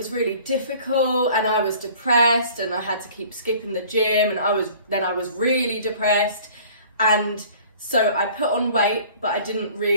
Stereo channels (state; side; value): inverted; both; correlation -0.49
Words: really difficult, and I was depressed and I had to keep skipping the gym, and I was really depressed. And so I put on weight, but I didn't